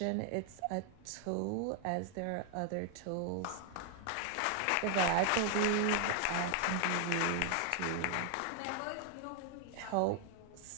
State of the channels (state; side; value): different; both; correlation 0.00